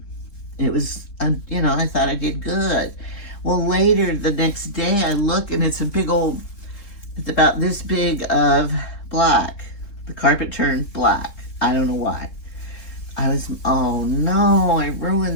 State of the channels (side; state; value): right; late; 3.6 ms